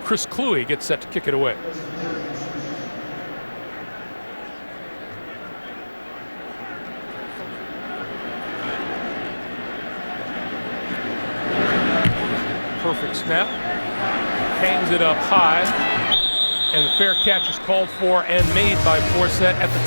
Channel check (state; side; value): inverted; both; correlation -1.00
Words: Chris Kluwe gets set to kick it away. Perfect snap. Hangs it up high. And the fair catch is called for and made by Forsett at